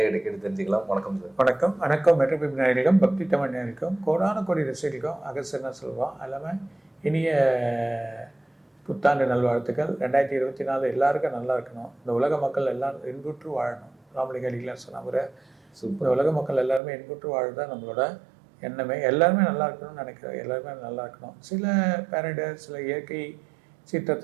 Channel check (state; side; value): drops out; left; at 16.8 s